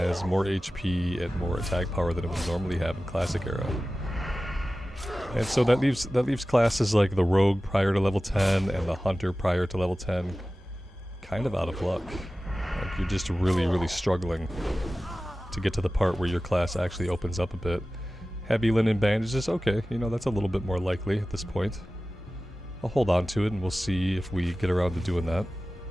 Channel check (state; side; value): normal; both; correlation 0.96